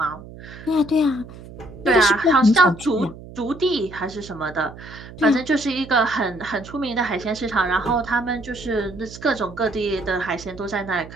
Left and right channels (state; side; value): noise; right; hum, 16 dB below the sound